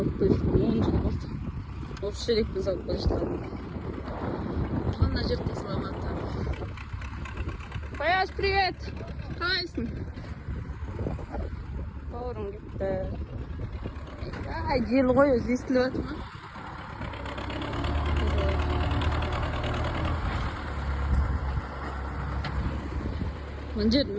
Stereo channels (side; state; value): both; identical; correlation 1.00